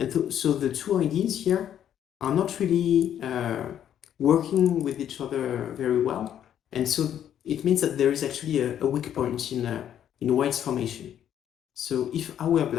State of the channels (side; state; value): right; quieter; 10.1 dB